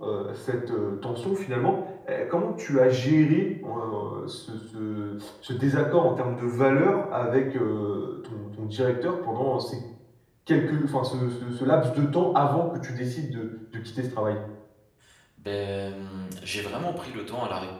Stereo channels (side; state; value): both; identical; correlation 1.00